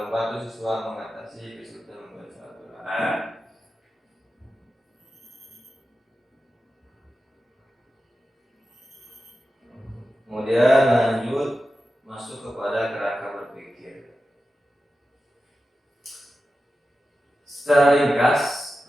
membantu siswa mengatasi kesulitan membaca Al-Quran. Kemudian lanjut masuk kepada kerangka berpikir. Secara ringkas,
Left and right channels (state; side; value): normal; both; correlation 0.92